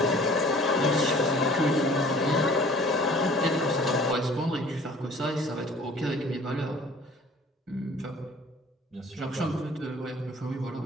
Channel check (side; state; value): both; normal; correlation 0.50